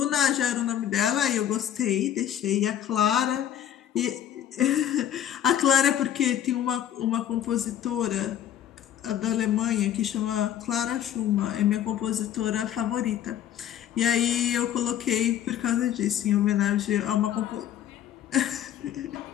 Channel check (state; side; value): quieter; right; 10.6 dB